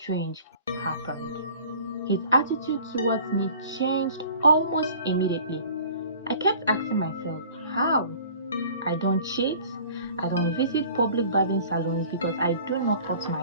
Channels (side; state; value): both; inverted; correlation -0.48